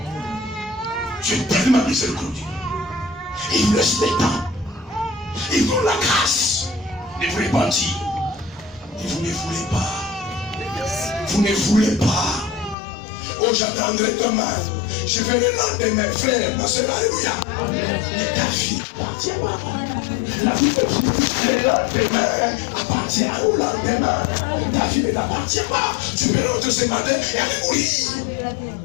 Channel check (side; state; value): right; drops out; at 12.8 s